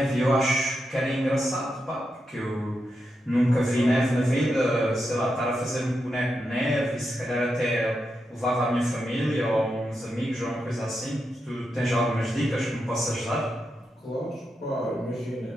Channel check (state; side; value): normal; both; correlation 0.86